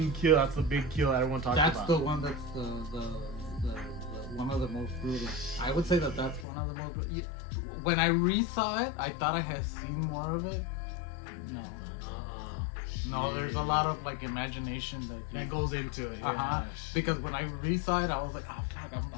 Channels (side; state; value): right; drops out; at 6.5 s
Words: kill. That's the big kill everyone talks about. That's the one that's the one of the most brutal. I would say that's one of the most brutal. When I re-saw it, I thought I had seen more of it. No, there's a lot of like imagination that goes into it. Yeah. Because when I re-saw it, I was like, oh fuck,